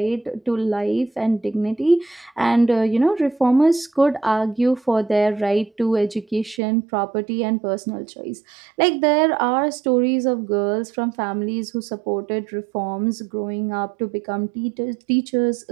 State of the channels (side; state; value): left; drops out; at 6.6 s